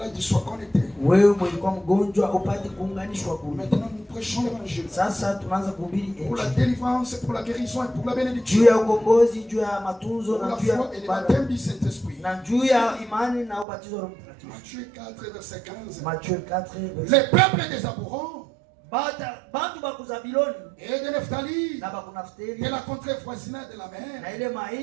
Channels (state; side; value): drops out; left; at 13.7 s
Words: sois connecté. Wewe mlikuwa mgonjwa upate kuunganishwa kule. Maintenant, nous prêchons l'évangile. Sasa tunaanza kuhubiri injili. Pour la délivrance, pour la guérison et pour la bénédiction. Juu ya ukombozi, juu ya matunzo na juu ya baptême du Saint-Esprit. Na juu ya imani na ubatizo wa Roho Mtakatifu. Matthieu 4 verset 15. Matthieu 4 verset. Les peuples des Aborons. Bantu baku Zabiloni et de Nephtali, na baku Naftali, de la contrée voisinage de la mer, na ile